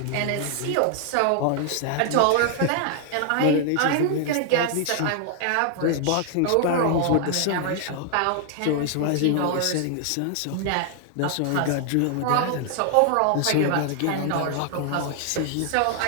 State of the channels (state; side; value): different; both; correlation 0.00